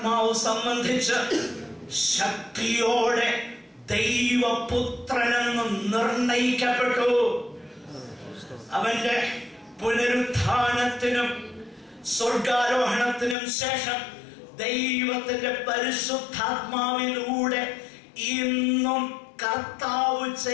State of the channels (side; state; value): right; drops out; at 13.4 s